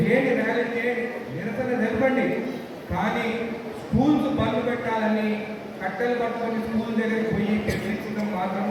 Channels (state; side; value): identical; both; correlation 1.00